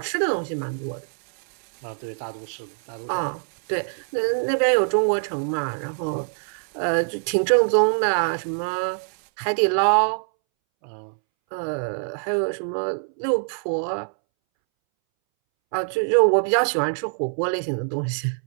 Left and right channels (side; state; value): left; silent; 63 dB below the other